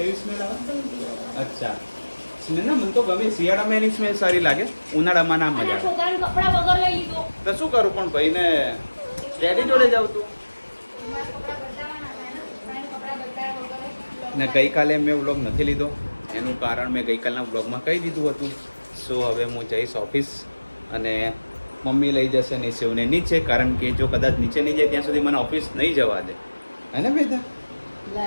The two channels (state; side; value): inverted; both; correlation -1.00